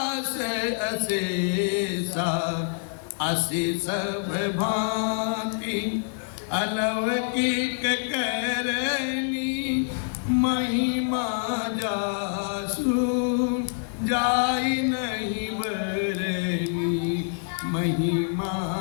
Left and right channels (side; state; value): right; silent; digital silence